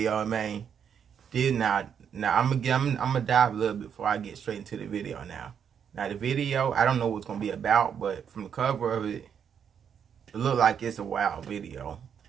man. Now I'm gonna dive a little bit before I get straight into the video now. Now the video, I don't know what it's gonna be about, but from the cover of it, it looked like it's a wild video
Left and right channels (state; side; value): quieter; left; 7.8 dB